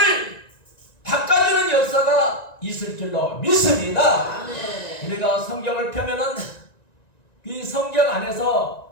바꿔주는 역사가 있을 줄로 믿습니다. 우리가 성경을 펴면은 이 성경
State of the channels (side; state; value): right; late; 1.9 ms